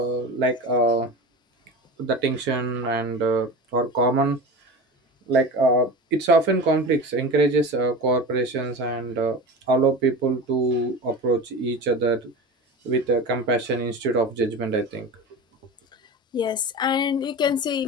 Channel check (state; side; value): normal; both; correlation 0.29